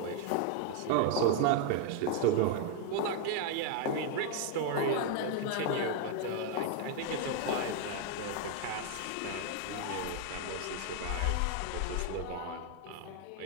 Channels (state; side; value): different; both; correlation 0.00